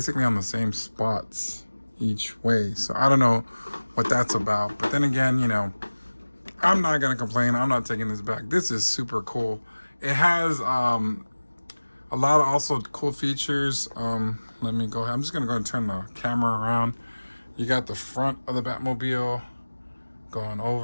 on the same spots each way. So I don't know what that's about. But then again, I'm not gonna complain. I'm not taking this back. This is super cool. It has a lot of also cool features. Let me go ahead. I'm just gonna go and turn the camera around. You got the front of the Batmobile going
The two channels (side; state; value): both; inverted; correlation -1.00